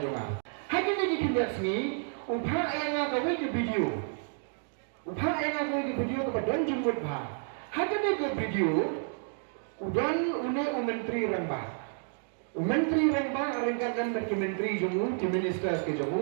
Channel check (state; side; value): silent; left; 57 dB below the other